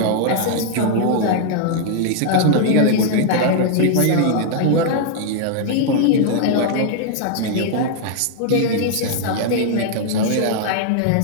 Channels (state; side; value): different; both; correlation -0.01